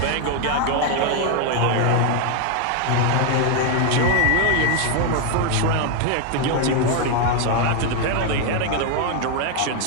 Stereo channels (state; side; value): different; both; correlation 0.01